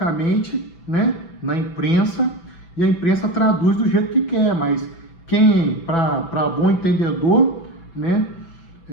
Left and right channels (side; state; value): right; late; 6.0 ms